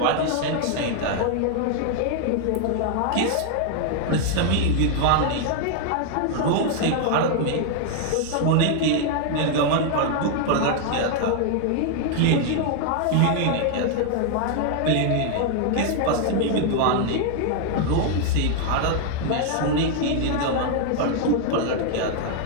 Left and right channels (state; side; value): different; both; correlation 0.00